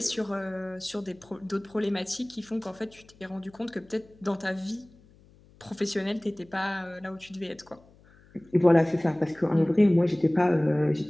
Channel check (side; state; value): left; noise; hum, 27 dB below the sound